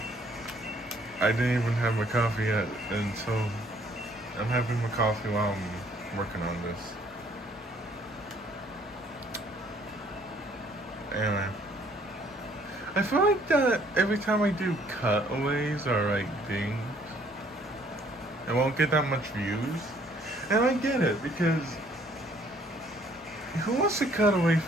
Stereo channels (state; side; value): normal; both; correlation 0.62